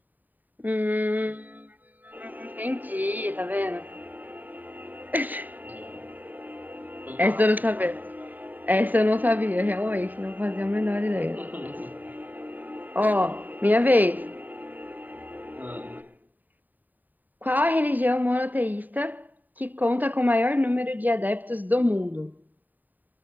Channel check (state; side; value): late; left; 0.087 ms